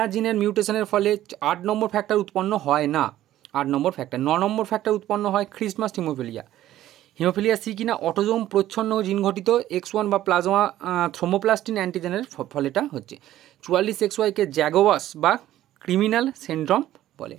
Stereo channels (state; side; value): quieter; left; 13.5 dB